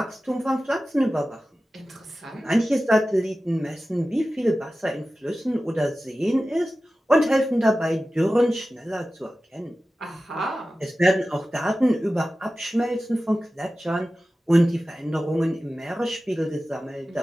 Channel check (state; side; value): normal; both; correlation 0.95